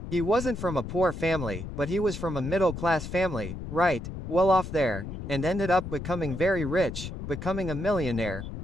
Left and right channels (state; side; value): noise; left; rumble, 8 dB below the sound